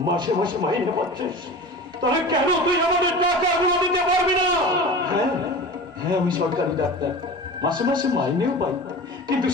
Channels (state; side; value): normal; both; correlation 0.34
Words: মাসে মাসে মাইনে পাচ্ছিস, তাহলে কেন তুই আমাদের টাকাগুলো দিতে পারবি না? হ্যাঁ হ্যাঁ আমি সরকারি ডাক্তার, মাসে মাসে মাইনেও পাই, কিন্তু